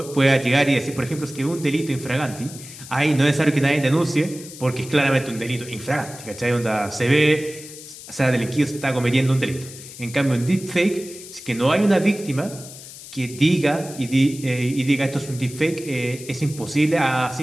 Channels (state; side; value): noise; left; hiss, 15 dB below the sound